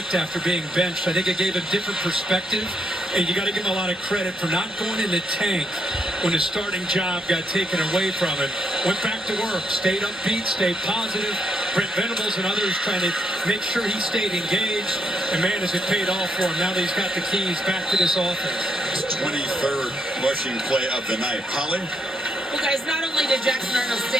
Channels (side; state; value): both; normal; correlation 0.76